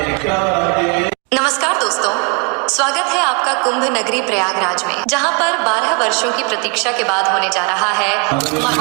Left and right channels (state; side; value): quieter; left; 34.7 dB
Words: नमस्कार दोस्तों, स्वागत है आपका कुंभ नगरी प्रयागराज में, जहां पर 12 वर्षों की प्रतीक्षा के बाद होने जा रहा है